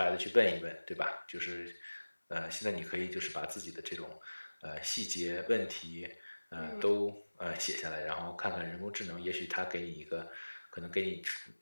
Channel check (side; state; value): both; inverted; correlation -1.00